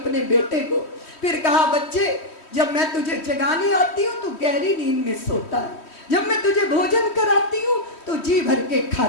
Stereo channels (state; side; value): late; right; 3.1 ms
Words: बेटे को। फिर कहा बच्चे जब मैं तुझे जगाने आती हूँ तो गहरी नींद में सोता है, जब मैं तुझे भोजन कराती हूँ तो जी भर के